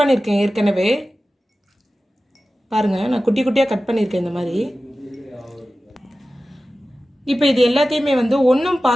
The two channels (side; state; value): both; normal; correlation 0.95